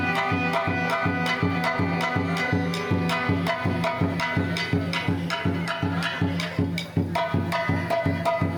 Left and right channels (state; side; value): identical; both; correlation 1.00